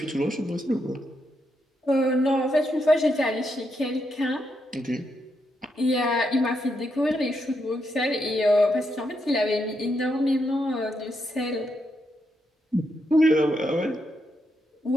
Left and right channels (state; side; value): normal; both; correlation 0.81